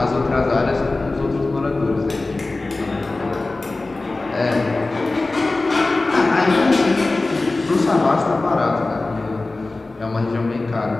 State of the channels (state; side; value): quieter; right; 3.2 dB